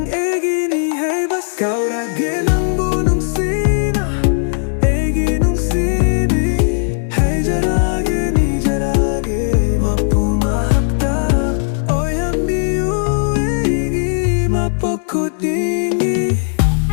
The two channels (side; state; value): right; silent; digital silence